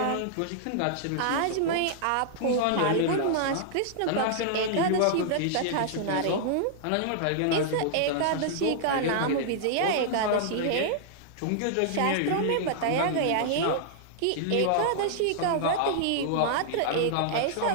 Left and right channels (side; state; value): both; different; correlation -0.01